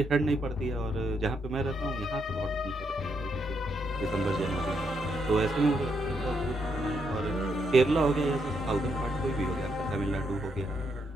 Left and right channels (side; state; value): both; normal; correlation 0.78